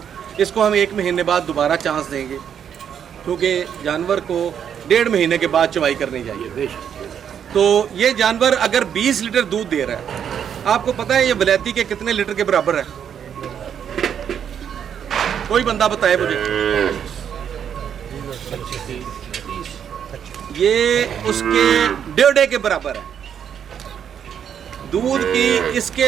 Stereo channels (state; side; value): quieter; left; 8.5 dB